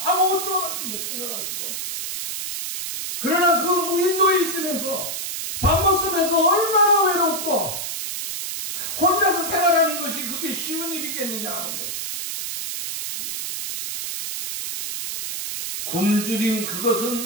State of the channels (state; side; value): noise; right; hiss, 4 dB below the sound